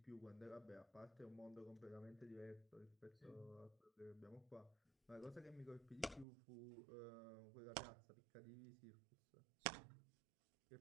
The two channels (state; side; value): drops out; left; at 6.2 s